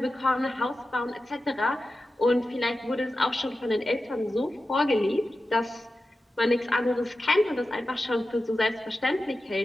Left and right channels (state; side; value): normal; both; correlation 0.93